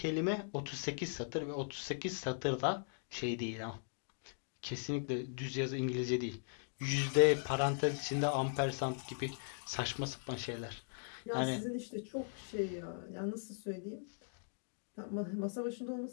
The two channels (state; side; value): silent; right; digital silence